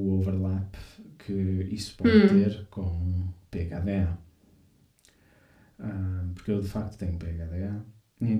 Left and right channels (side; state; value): both; identical; correlation 1.00